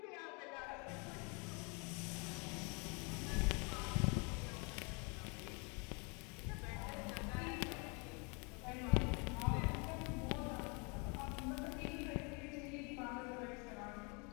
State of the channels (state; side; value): quieter; right; 32.5 dB